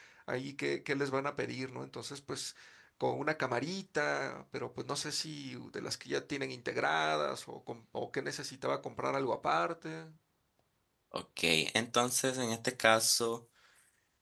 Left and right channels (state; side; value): identical; both; correlation 1.00